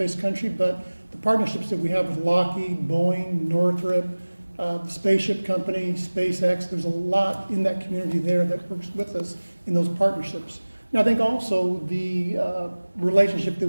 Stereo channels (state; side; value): inverted; both; correlation -1.00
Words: country, but the partnerships that we have with Lockheed, Boeing, Northrop, the spaceship company, SpaceX, there's a lot in that community there that works with us in those partnerships. And I think also the relationship that